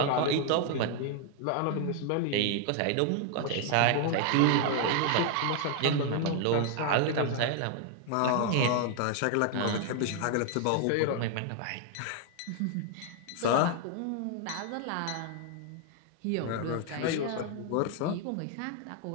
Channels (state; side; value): different; both; correlation 0.00